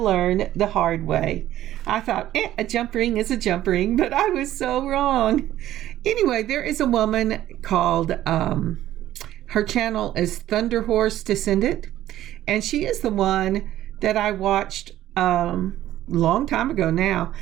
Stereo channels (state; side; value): quieter; left; 13.4 dB